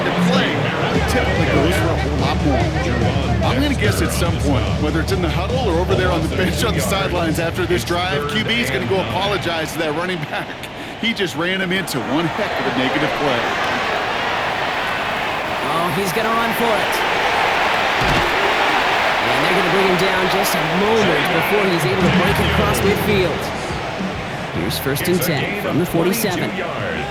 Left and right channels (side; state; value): both; identical; correlation 1.00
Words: the play. Typically goes for a whole lot more. I'm going to guess at some point, whether it's in the huddle or over there on the bench on the sidelines after this drive, QB is going to go apologize to that running back. He just ran him into one heck of a negative play. Oh, he's going to run for it. And they're going to bring him down just a moment before he's able to break it across midfield. Here's first and 10 from the 47. Play